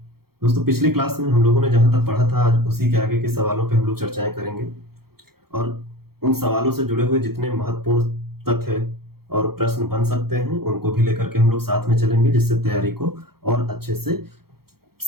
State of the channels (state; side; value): late; left; 0.94 ms